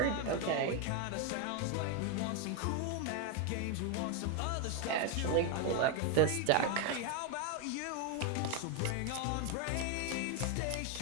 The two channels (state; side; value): different; both; correlation 0.01